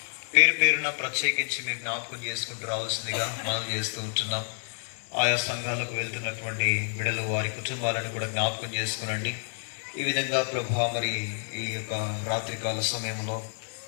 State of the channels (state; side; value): silent; right; digital silence